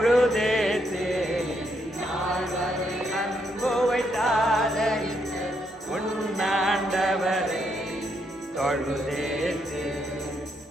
அன்பு வைத்தாலே உன்னாண்டவரை தொழுதேத்து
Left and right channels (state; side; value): normal; both; correlation 0.77